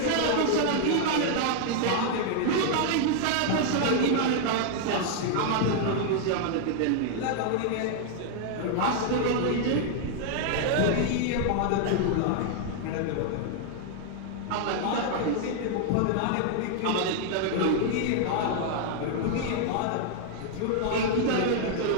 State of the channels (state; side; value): different; both; correlation -0.01